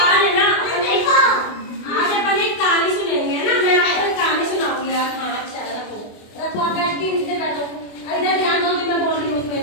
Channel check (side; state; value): right; late; 24 ms